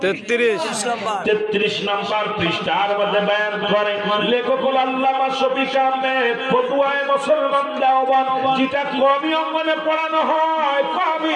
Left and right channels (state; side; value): identical; both; correlation 1.00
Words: 33 নম্বর পৃষ্ঠার মধ্যে বয়ান করে লেখক আল্লামা শফিক আহমেদ, ফতুয়ায়ে মুসলমান দাওয়াত, যেটা কওমি অঙ্গনে পড়ানো হয়, কওমি